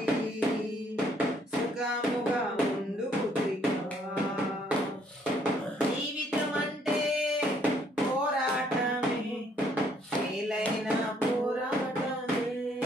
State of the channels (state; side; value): normal; both; correlation 0.66